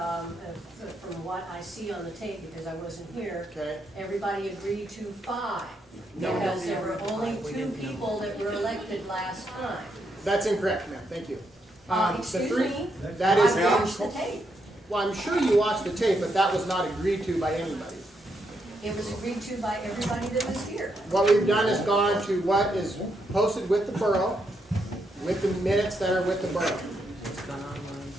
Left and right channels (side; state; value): both; normal; correlation 0.79